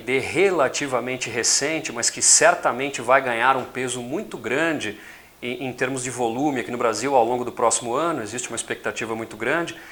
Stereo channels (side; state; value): both; identical; correlation 1.00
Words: relativamente recente, mas que certamente vai ganhar um peso muito grande em termos de volume aqui no Brasil ao longo do próximo ano. Existe uma expectativa muito grande